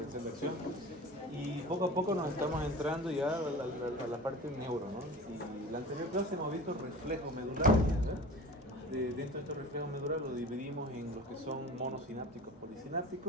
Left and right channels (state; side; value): normal; both; correlation 0.37